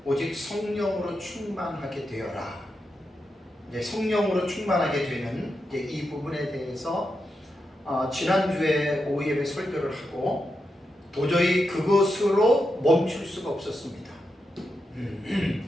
오직 성령으로 충만하게 되어라. 이제 성령으로 충만하게 되는 이제 이 부분에 대해서 지난주에 오후 예배 설교를 하고 도저히 그것으로 멈출 수가 없었습니다.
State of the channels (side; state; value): both; normal; correlation 0.86